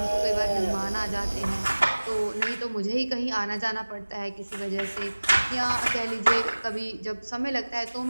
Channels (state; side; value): inverted; both; correlation -1.00